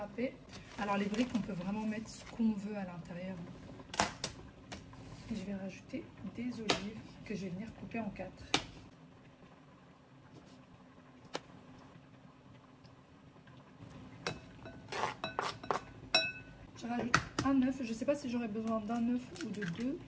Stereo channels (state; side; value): identical; both; correlation 1.00